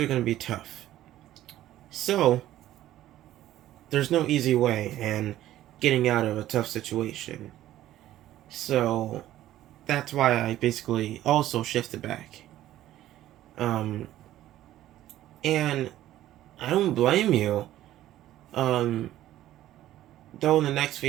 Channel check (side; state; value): left; quieter; 13.7 dB